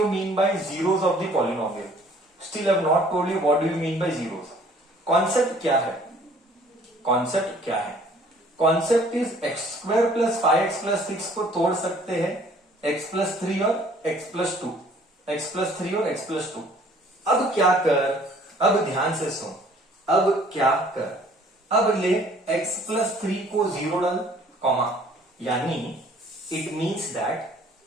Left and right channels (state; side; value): normal; both; correlation 0.56